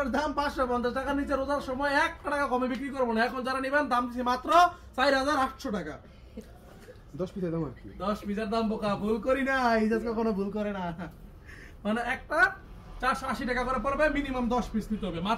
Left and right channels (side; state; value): both; identical; correlation 1.00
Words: দাম ৫৫০ টাকার নিচে রোজার সময় ১ টাকা কমে বিক্রি করবো না। এখন যারা নিবেন দাম দিচ্ছি মাত্র ৪,৮০০ টাকা। ১০ পিসের দাম আর কি, ১০ পিসের দাম বোকা, ভুল করি না, ইজাজ কখনো ভুল করে না। মানে একটা ৪৮০ টাকা করে পড়বে, মিনিমাম ১০ পিস নিতে হবে,